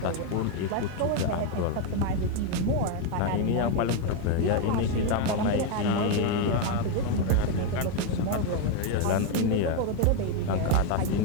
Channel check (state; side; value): different; both; correlation 0.01